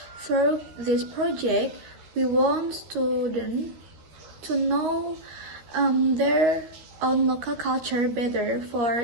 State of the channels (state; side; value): late; left; 13 ms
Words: Through this project, we want students to know their own local culture better.